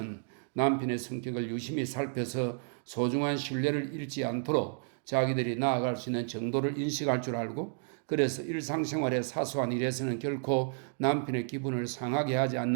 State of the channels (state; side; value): silent; left; 57 dB below the other